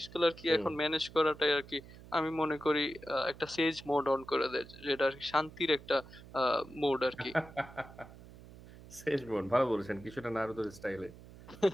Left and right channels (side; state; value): right; noise; hum, 18 dB below the sound